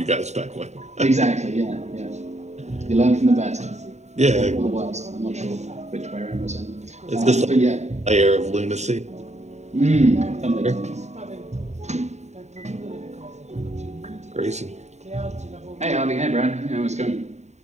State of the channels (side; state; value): left; late; 0.33 ms